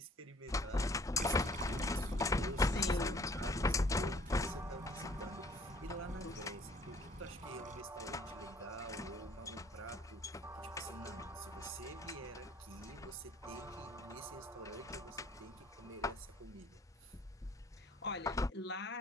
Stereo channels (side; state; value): both; normal; correlation 0.57